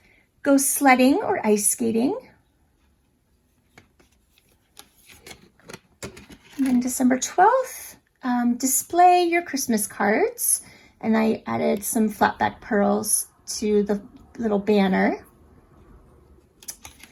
Go sledding or ice skating. And then December 12th, display your Christmas cards. And I added some flat back pearls to the little banner.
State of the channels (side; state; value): both; identical; correlation 1.00